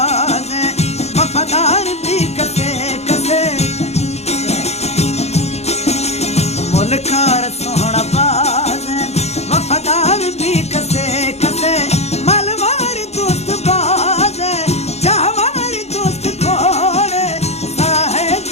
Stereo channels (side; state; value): right; late; 0.31 ms